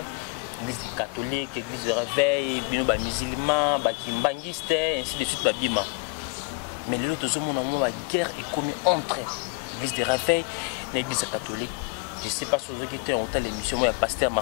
catholique, l'église de réveil, les musulmans, les kimbangistes, ainsi de suite. Mais les autres hommes, la guerre est commise entre l'église de réveil et l'église catholique. Je ne sais pas si vous avez été en temps l'émission, moi, Pasteur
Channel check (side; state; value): right; quieter; 30.6 dB